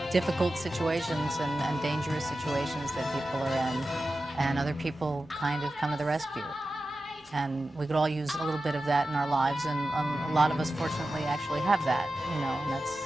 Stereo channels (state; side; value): normal; both; correlation 0.93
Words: difficult situations and dangerous situations that people are in, and other people kind of come to the rescue. And we could all use a little bit of that in our lives, and a lot of us fortunately actually have that, and